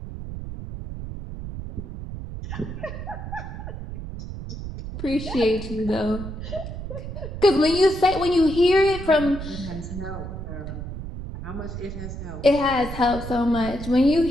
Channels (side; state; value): right; noise; rumble, 8 dB below the sound